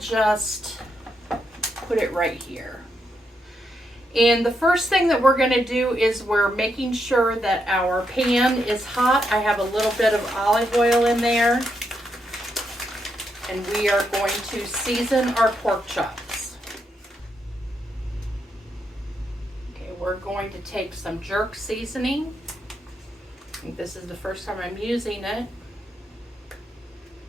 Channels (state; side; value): normal; both; correlation 0.81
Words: put it right here. And the first thing that we're going to do is we're making sure that our pan is hot. I have a little bit of olive oil in there. And we are going to season our pork chops. Okay, we're going to take some jerk seasoning. I think this is the first time I'm using it.